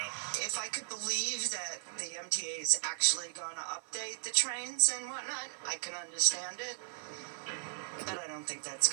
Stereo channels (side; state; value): left; silent; 54 dB below the other